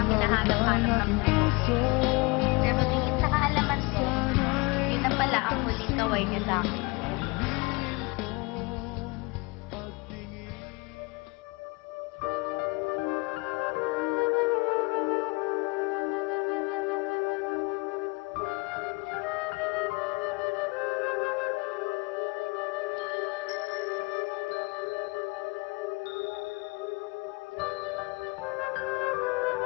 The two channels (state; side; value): quieter; right; 27.0 dB